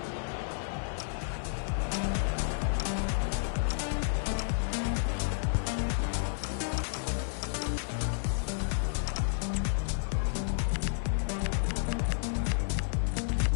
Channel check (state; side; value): silent; right; 57 dB below the other